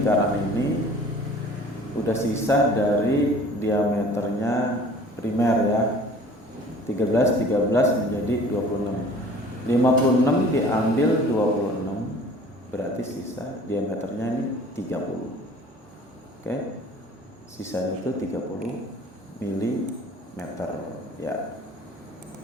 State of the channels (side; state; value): both; normal; correlation 0.48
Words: ini udah sisa dari diameternya primer ya. 13 menjadi 26. 56 diambil 26 berarti sisa diameternya ini 30. Oke. Sisanya itu 30 mm ya.